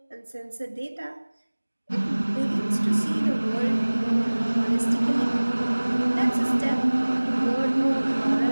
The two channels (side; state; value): both; inverted; correlation -1.00